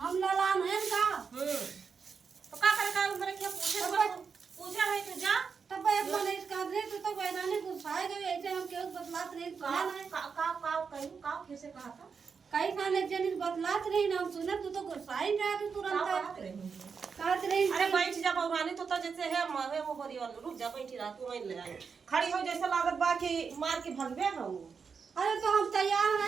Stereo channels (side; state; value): left; quieter; 5.7 dB